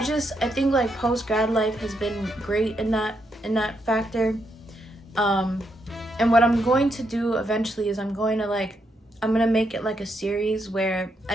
like post-grad life has been great in that factor. And what I'm going to do eventually is I'm going to make it like a series where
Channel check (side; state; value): both; normal; correlation 0.79